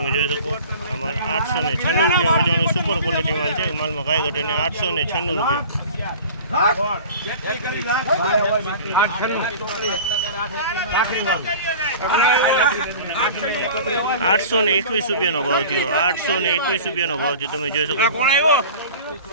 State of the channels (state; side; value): inverted; both; correlation -0.41